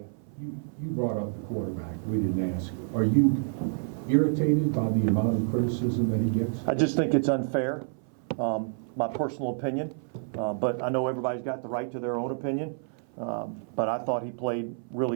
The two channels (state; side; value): silent; left; 57 dB below the other